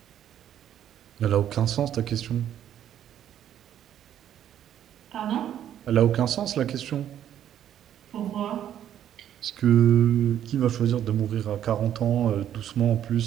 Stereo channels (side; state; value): left; quieter; 10.6 dB